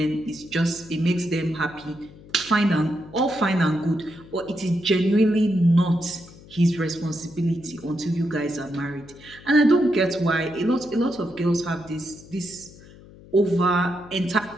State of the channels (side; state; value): left; noise; hum, 21 dB below the sound